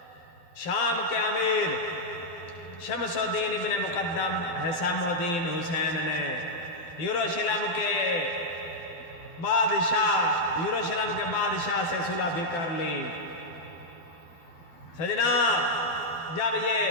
شام کے امیر شمس الدین ابن مقدم حسام الدین حسین نے یروشلم کے بادشاہ سے صلح بھی کر لی۔ سجنا، جب یہ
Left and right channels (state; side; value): late; right; 12 ms